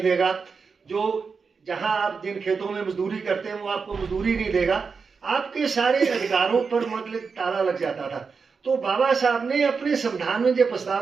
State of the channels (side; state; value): left; quieter; 5.2 dB